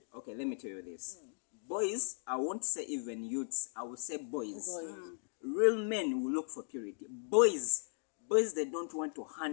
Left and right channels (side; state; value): right; silent; 53 dB below the other